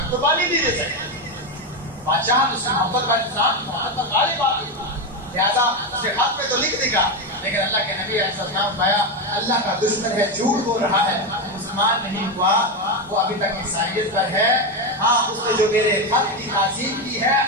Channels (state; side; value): normal; both; correlation 0.11